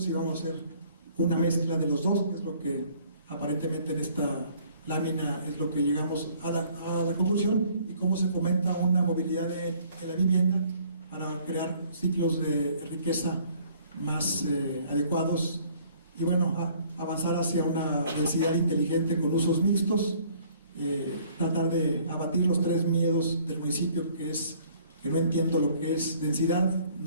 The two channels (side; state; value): both; inverted; correlation -0.58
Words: vamos a hacer una mezcla de los dos, que es lo que aparentemente en esta lámina es lo que llegamos a la conclusión, y cómo se fomenta una movilidad de la vivienda para crear ciclos de riqueza más adecuados y bueno, avanzar hacia una densidad inteligente con usos mixtos, tratar de abatir los 3 miedos del municipio, que es que no entiendo lo que es densidad,